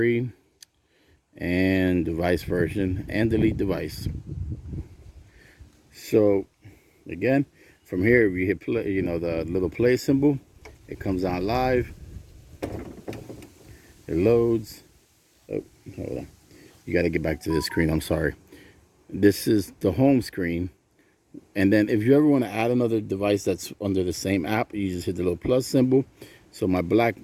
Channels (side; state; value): both; identical; correlation 1.00